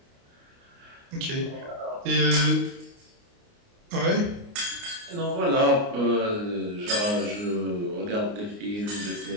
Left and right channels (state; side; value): late; left; 29 ms